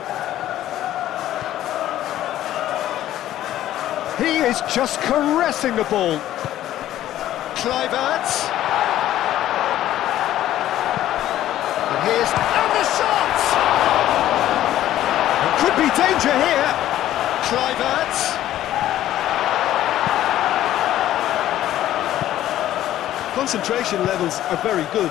He is just caressing the ball. Kluivert. And the shot! There could be danger here. Kluivert. Concentration levels are very good,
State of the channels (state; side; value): quieter; right; 13.1 dB